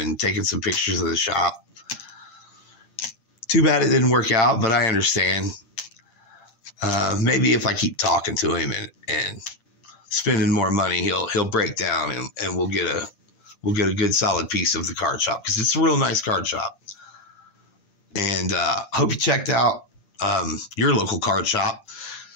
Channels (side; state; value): right; late; 9.9 ms